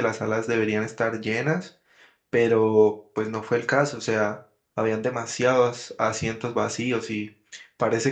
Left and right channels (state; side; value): identical; both; correlation 1.00